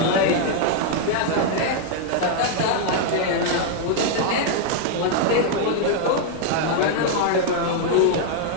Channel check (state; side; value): different; both; correlation 0.00